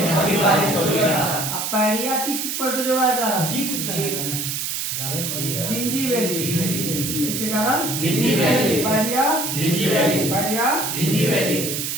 अमीबा हिस्टोलिटिका। पैरिया किस प्रोटोजोआ के कारण? जी कुछ जिंजीबेली। किसके कारण? जिंजीबेली। पैरिया जिंजीबेली। पैरिया जिंजीबेली।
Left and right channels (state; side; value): noise; right; hiss, 3 dB below the sound